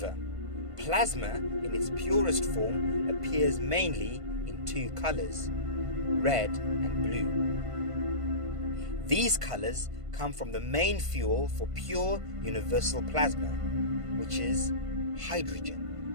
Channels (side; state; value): left; late; 1.5 ms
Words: plasma in its purest form appears mainly in two colors, red and blue. These colors come from the main fuel for pure universal plasma, which is